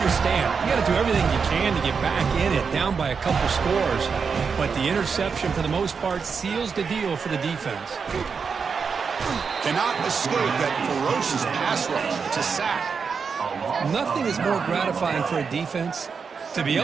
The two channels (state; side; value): quieter; left; 5.7 dB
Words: You got to do everything you can to get back in it, down by a couple scores. But the interception, for the most part, seals the deal for the defense. Cannot escape that ferocious pass rush. It's a sack. Nothing is more gratifying for a defense to be